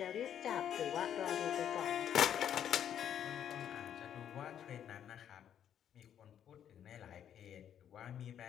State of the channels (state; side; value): quieter; right; 9.6 dB